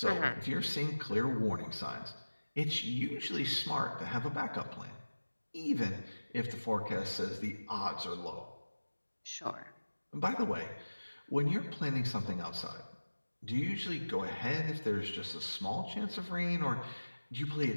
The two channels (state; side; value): inverted; both; correlation -1.00